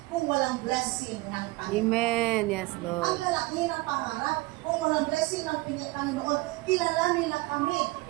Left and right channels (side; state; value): left; quieter; 21.9 dB